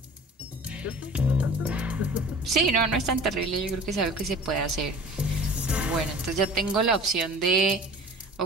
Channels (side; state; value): both; normal; correlation 0.42